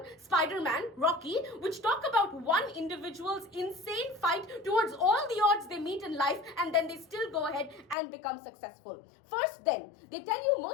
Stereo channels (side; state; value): right; drops out; at 8.0 s